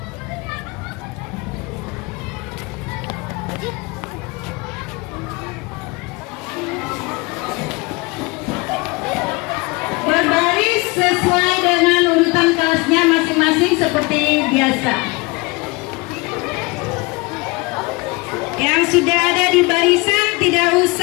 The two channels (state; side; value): quieter; right; 25.8 dB